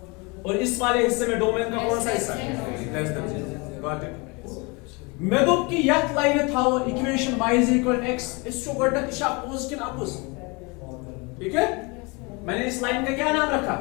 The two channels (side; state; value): right; quieter; 28.6 dB